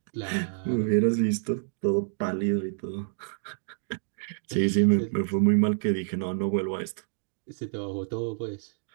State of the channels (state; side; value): silent; left; digital silence